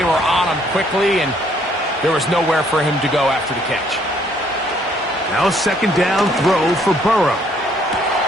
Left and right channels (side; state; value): both; normal; correlation 0.65